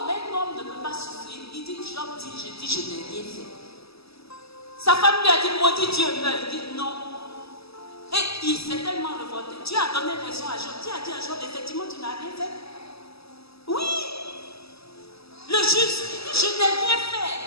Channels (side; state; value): right; late; 0.78 ms